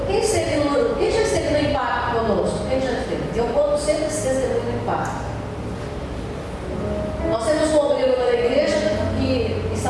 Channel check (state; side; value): identical; both; correlation 1.00